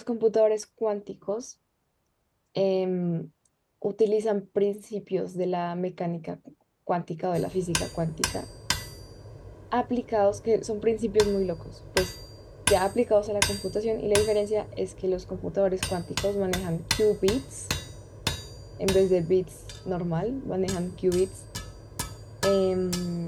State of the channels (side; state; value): both; identical; correlation 1.00